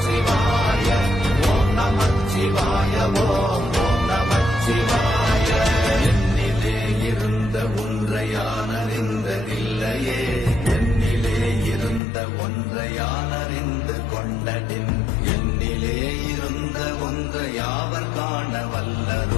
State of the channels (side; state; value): right; drops out; at 12.0 s